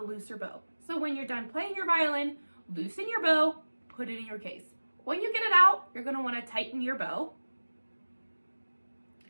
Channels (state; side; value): inverted; both; correlation -1.00